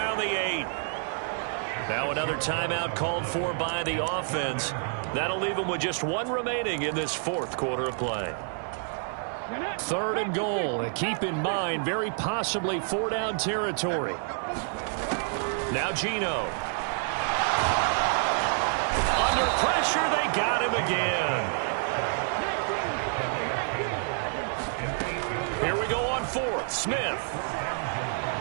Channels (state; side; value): silent; left; 59 dB below the other